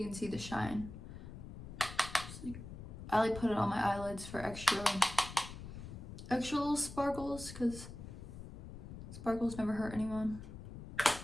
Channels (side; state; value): left; noise; rumble, 11 dB below the sound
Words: can see the shine. I like put it on my eyelids for extra little sparkles, because sparkles never hurt anyone.